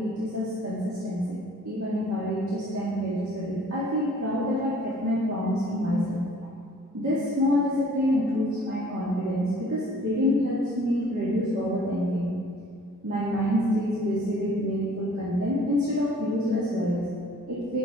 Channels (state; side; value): normal; both; correlation 0.54